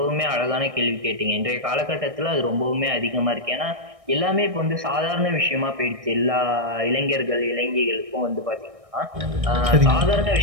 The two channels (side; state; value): left; late; 1.6 ms